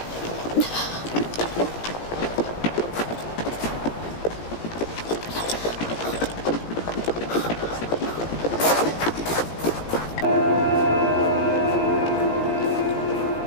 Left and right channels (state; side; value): late; right; 17 ms